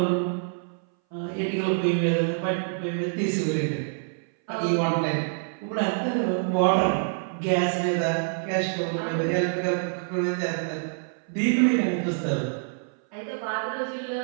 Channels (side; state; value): left; silent; 59 dB below the other